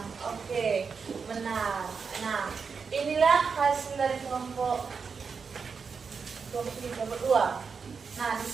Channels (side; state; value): left; quieter; 5.6 dB